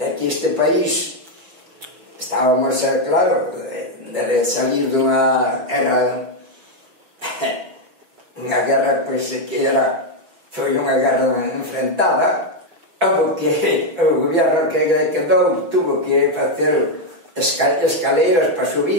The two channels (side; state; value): left; late; 6.0 ms